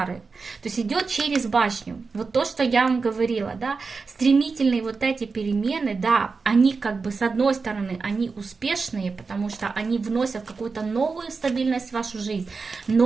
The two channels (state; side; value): quieter; left; 4.6 dB